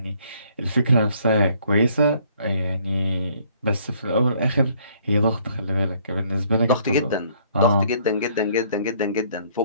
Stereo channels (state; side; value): inverted; both; correlation -0.62